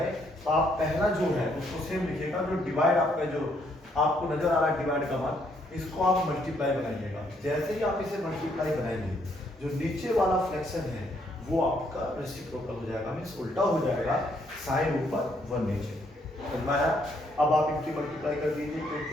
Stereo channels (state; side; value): normal; both; correlation 0.71